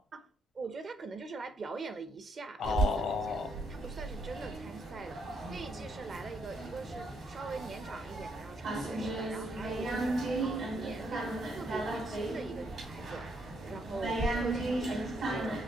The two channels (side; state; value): both; normal; correlation 0.74